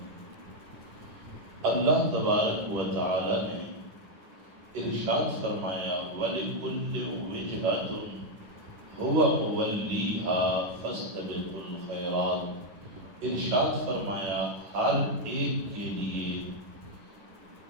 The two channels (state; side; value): late; left; 10 ms